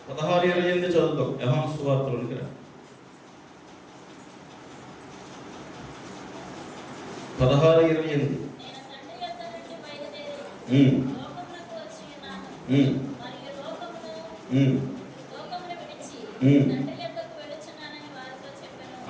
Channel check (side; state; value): both; identical; correlation 1.00